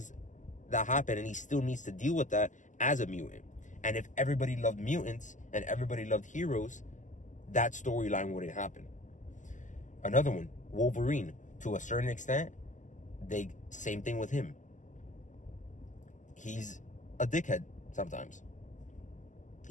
that happen, and he still needs to deal with that as a mutant. And if everybody loved mutants and everybody loved heroes, that storyline wouldn't happen. Another one, Wolverine, to a certain extent, same thing with him. He's a dickhead sometimes.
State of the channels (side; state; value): right; late; 0.37 ms